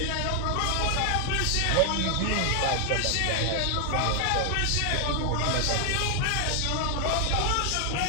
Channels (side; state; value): both; different; correlation 0.00